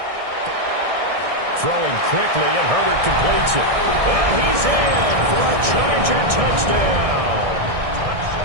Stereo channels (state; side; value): late; left; 1.6 ms